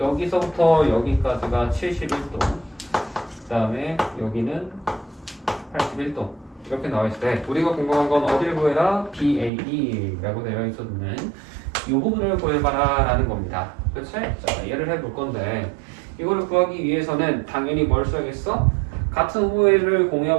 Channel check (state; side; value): drops out; left; at 9.5 s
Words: 여기서부터 여기까지가 71도 그 다음에 여기는 81도 이렇게 나와있을 때 우리가 궁금한 건 어디를 구해라? BAB라고 되어 있었는 이 부분을 구해봐라 라는 겁니다. 그치? 자, 얘를 해볼 건데 이거를 구하기 위해서는 당연히 뭘 써야겠어? 같은 호흡을